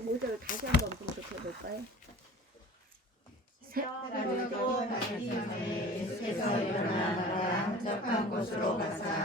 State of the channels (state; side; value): normal; both; correlation 0.42